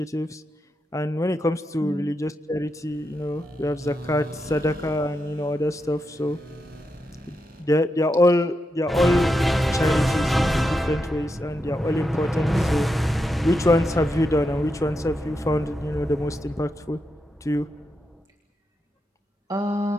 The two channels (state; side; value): normal; both; correlation 0.86